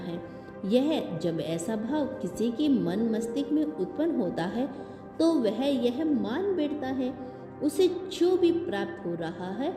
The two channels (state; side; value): identical; both; correlation 1.00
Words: यह जब ऐसा भाव किसी के मन मस्तिष्क में उत्पन्न होता है तो वह यह मान बैठता है उसे जो भी प्राप्त हो रहा है